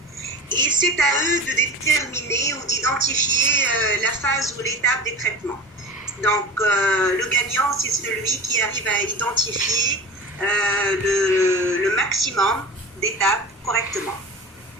et c'est à eux de déterminer ou d'identifier la phase ou l'étape des traitements. Donc, le gagnant, c'est celui qui arrive à identifier le maximum d'étapes correctement.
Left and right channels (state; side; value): normal; both; correlation 0.33